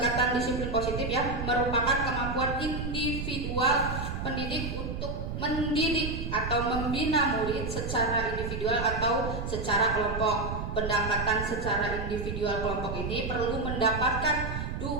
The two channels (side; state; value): right; noise; rumble, 4 dB below the sound